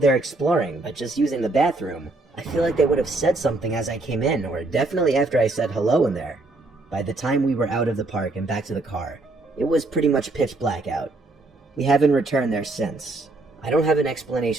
exploring, but just using the bathroom, I feel like they would have said something as I came in, or definitely after I said hello in there. By the time we were out of the park and back to the car, it was pretty much pitch black out. We haven't returned there since. I don't have an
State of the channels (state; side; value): quieter; left; 3.1 dB